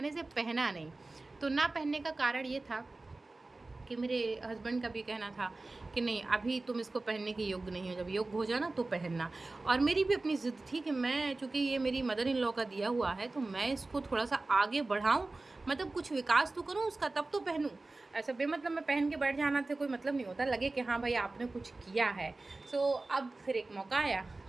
इसे पहना नहीं। तो ना पहनने का कारण ये था कि मेरे हस्बैंड का भी कहना था कि नहीं, अभी तुम इसको पहनने के योग्य नहीं हो, जब योग्य हो जाना तो पहनना। और मेरी भी अपनी ज़िद थी कि मैं, चूँकि ये मेरी मदर इन लॉ का दिया हुआ है, तो मैं इसको थोड़ा-सा आगे बढ़ाऊँ, मतलब कुछ विकास तो करूँ उसका, तब तो पहनूँ। ऐसा बेमतलब में पहन के बैठ जाना से कोई मतलब नहीं होता, लगे कि हाँ भाई आपने कुछ किया है। अब फिर एक मौका आया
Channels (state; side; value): quieter; left; 3.2 dB